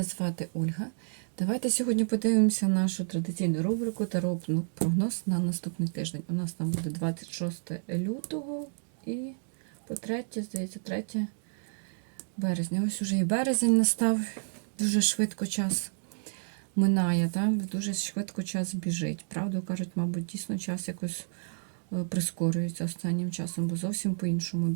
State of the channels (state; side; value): silent; left; digital silence